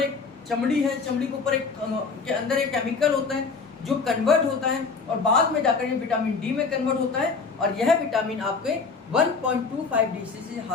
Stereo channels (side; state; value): right; quieter; 4.7 dB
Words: एक चमड़ी है, चमड़ी के ऊपर के अंदर एक केमिकल होता है जो कन्वर्ट होता है और बाद में जाकर ये विटामिन डी में कन्वर्ट होता है और यह विटामिन आपके 1.25 DCC